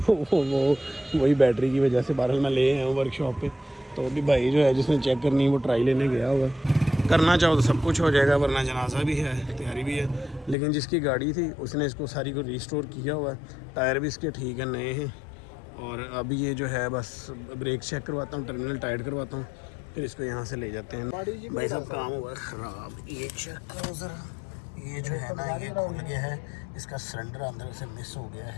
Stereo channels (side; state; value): right; drops out; at 10.6 s